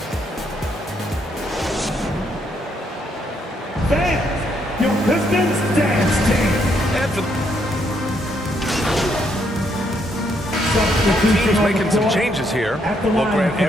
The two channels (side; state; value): both; normal; correlation 0.74